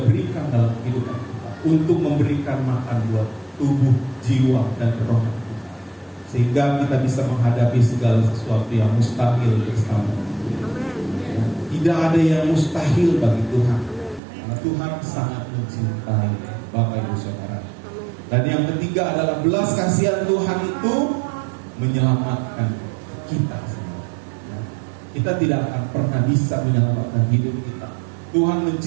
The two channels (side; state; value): left; drops out; at 14.2 s